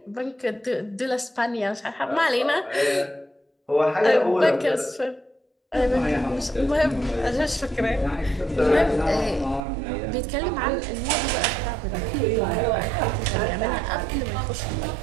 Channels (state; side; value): drops out; left; at 9.6 s